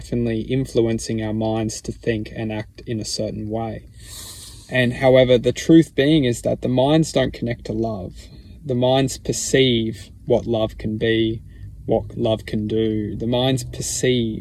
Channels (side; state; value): both; identical; correlation 1.00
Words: influencing our minds to think and act in a certain way. And however, the truth being is that the minds don't connect to love. The minds perceive what love can be, what love can do. The minds